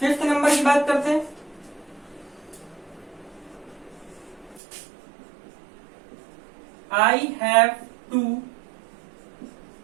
नंबर की बात करते हैं। I have to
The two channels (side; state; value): left; drops out; at 4.6 s